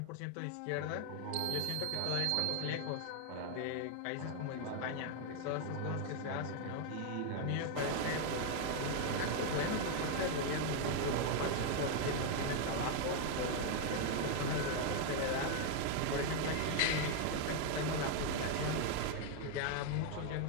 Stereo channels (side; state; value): both; different; correlation 0.00